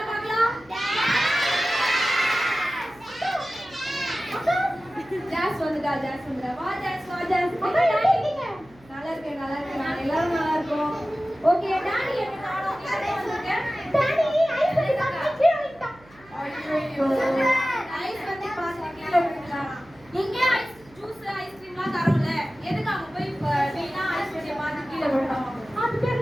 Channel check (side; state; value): right; noise; hum, 26 dB below the sound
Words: பார்க்கலாம். ஜாஸ் வந்துடா ஜாஸ் வந்துடா. வா ஜாஸ் வா ஜாஸ். நல்லா இருக்கேன் நல்லா இருக்கேன். நான் எல்லாரும் நல்லா இருக்கோம். ஓகே டாடி என்ன காணோம்? நீங்க வந்திருக்க? டாடி ஐஸ் வந்து கீழ விட்டா. ஐயோ ஐஸ் வந்து பாத்து கீழ விட்டா. இங்க ஐஸ் ஜூஸ் ஐஸ்கிரீம்லாம் தரோம்ல, எதுக்கு அங்க போய் வீணா ஐஸ் வண்டிய பாத்து கீழ விட்டோம்? அது